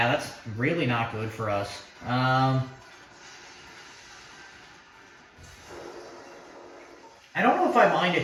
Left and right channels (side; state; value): both; identical; correlation 1.00